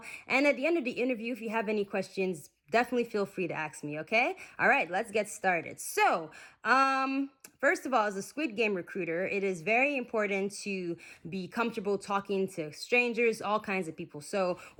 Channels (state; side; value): identical; both; correlation 1.00